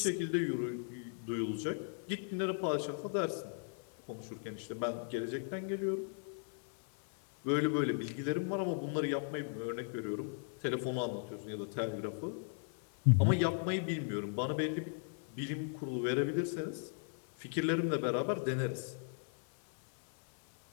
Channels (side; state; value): right; silent; 53 dB below the other